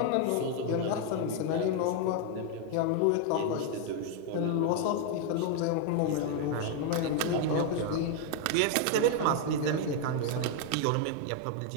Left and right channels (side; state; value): both; different; correlation 0.01